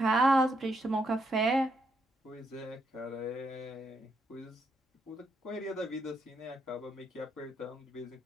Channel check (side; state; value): both; normal; correlation 0.77